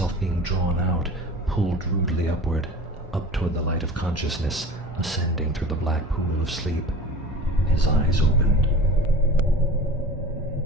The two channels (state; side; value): normal; both; correlation 0.38